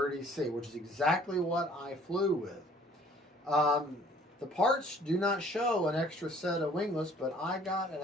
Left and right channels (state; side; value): normal; both; correlation 0.56